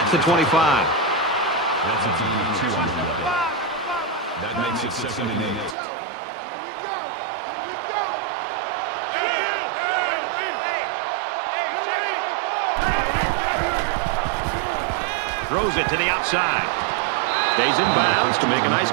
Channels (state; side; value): drops out; left; at 5.8 s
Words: the 25. That's a gain of 2 on the play. That makes it 2nd and 8. Throws it to the outside. Stays in bounds to make a nice